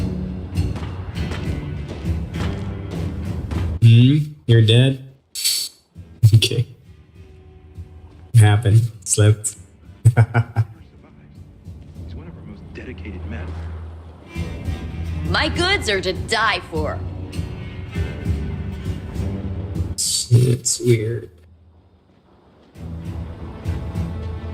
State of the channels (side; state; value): both; identical; correlation 1.00